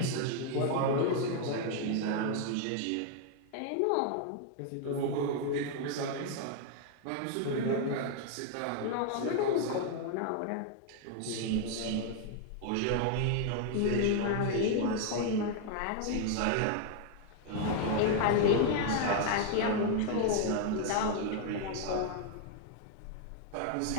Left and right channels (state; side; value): different; both; correlation 0.00